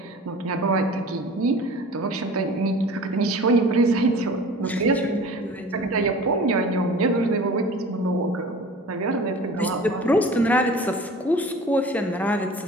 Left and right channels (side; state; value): both; normal; correlation 0.42